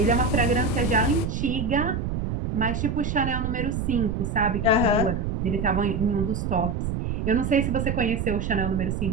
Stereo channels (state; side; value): noise; right; rumble, 2 dB below the sound